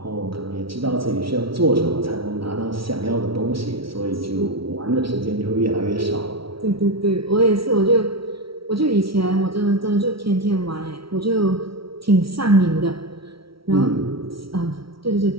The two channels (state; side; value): late; left; 0.75 ms